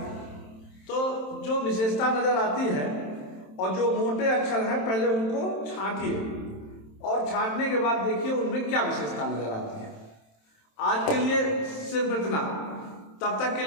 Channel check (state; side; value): late; right; 27 ms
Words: तो जो विशेषता नजर आती है और जो मोटे अक्षर हैं पहले उनको छांटिए और छांटने के बाद देखिए उनमें क्या विशेषता नजर आती है। आज के लिए सिर्फ इतना। तब तक के